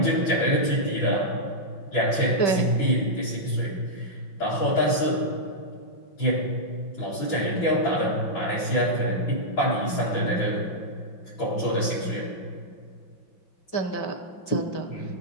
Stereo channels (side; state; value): right; late; 5.9 ms